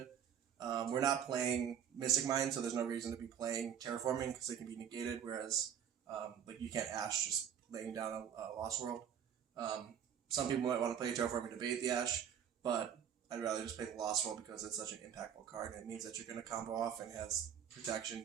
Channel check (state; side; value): quieter; left; 8.6 dB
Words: We're not playing Mystic Mine, so there's no reason to be playing Terraforming because they can be negated, whereas like you can't Ash just laying down a Lost World. Some people might want to play Terraforming to bait the Ash, but I'd rather just play the Lost World because it's such an impactful card, and it means that you're going to combo off and has protection,